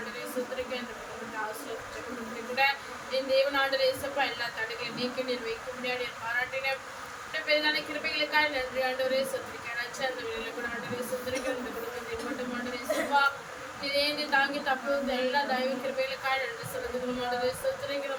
சுத்திரிக்க இந்த குடும்பத்தை ஆசிரியர் கூட என் தேவனாண்டு எசப்பா எல்லா தடைகளையும் நீக்கி நீர் வைக்க முடியாது பாராட்டின பெரிதான கிருபைகளுக்காக நன்றி ஆண்டவரே சுத்திரிக்கிறேன். அந்த வேலையில் கூட ஆண்டு சுத்திரிக்கிற இந்த குடும்பத்தை மட்டும் ஆண்டு எசப்பா இதேந்து தாங்கி தப்பு எல்லா தயவு கிருபைகளுக்காக நன்றி செலுத்துகிறோம். ஆண்டு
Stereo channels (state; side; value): identical; both; correlation 1.00